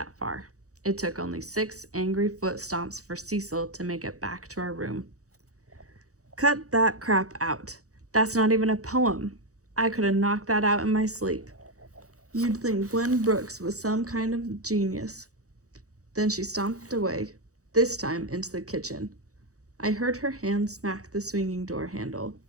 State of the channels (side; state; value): left; late; 0.65 ms